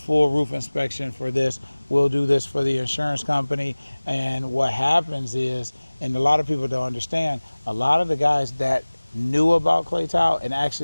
roof inspection for this. We'll do this for the insurance company. And what happens is, and a lot of people don't understand, a lot of the guys that knew about clay tile and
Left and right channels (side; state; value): both; inverted; correlation -1.00